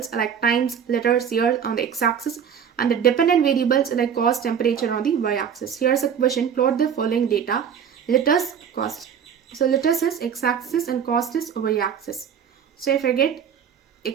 like times, letters, years on the x-axis and the dependent variables like cost, temperature on the y-axis. Here's a question, plot the following data, letters, cost. So letters is x-axis and cost is y-axis. So if I get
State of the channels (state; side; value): quieter; left; 7.9 dB